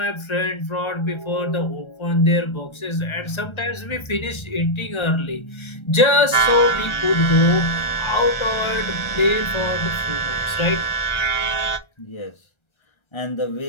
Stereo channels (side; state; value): right; late; 1.3 ms